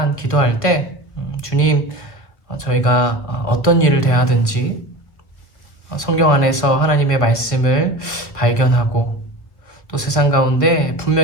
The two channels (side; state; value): right; late; 1.3 ms